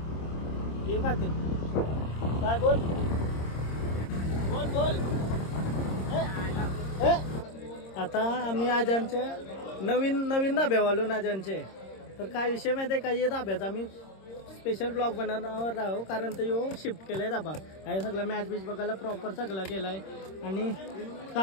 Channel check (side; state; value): right; late; 26 ms